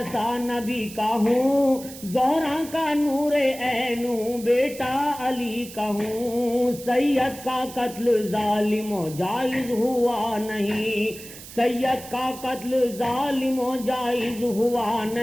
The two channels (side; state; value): right; noise; hiss, 15 dB below the sound